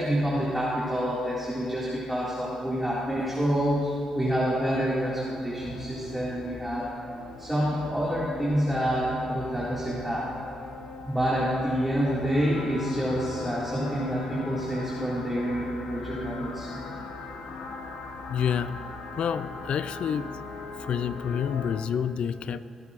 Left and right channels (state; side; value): normal; both; correlation 0.81